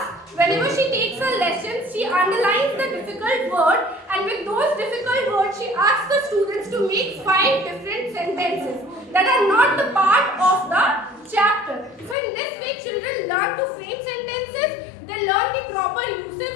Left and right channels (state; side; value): drops out; right; at 12.2 s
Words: Whenever she takes her lessons, she underlines the difficult word, and with those difficult words, she asks the students to make 5 different sentences that are not the part of the chapter. So in this way, children learn to frame sentences, they learn the proper uses